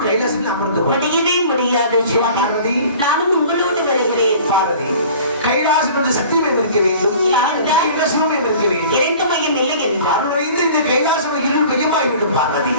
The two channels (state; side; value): inverted; both; correlation -0.45